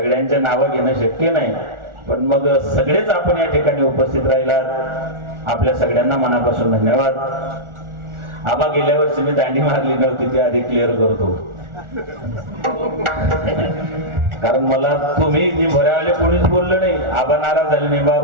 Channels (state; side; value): late; left; 1.4 ms